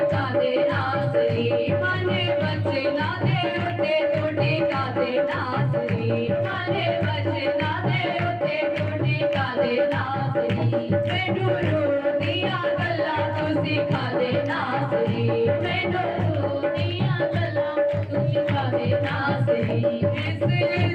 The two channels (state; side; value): identical; both; correlation 1.00